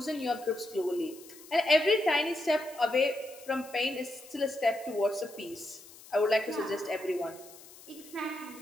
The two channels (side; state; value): left; noise; hiss, 20 dB below the sound